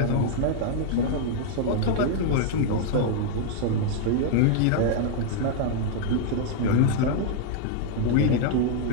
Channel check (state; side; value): different; both; correlation -0.01